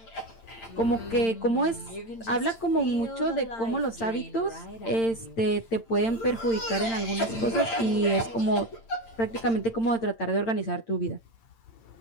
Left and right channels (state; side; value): late; right; 8.8 ms